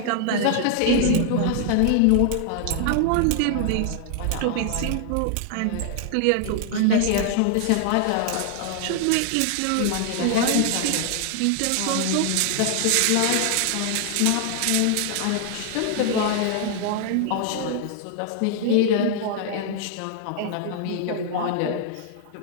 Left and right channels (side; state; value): both; different; correlation 0.00